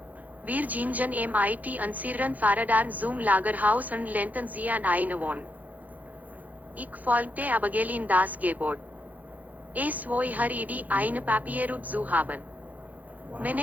Wir gingen mit unseren Fahrrädern zum Lagerhaus und lehnten sie an eine Wand. Ich folgte Abigail in das Gebäude. Es war ihre Idee, eine Papierroute zu haben.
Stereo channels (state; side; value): late; left; 0.080 ms